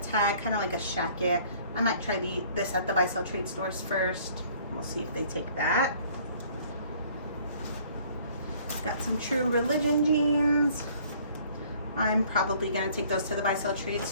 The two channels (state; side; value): inverted; both; correlation -0.56